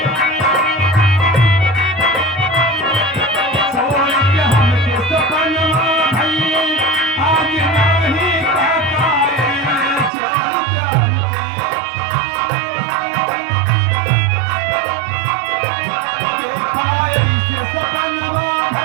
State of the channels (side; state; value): left; drops out; at 10.1 s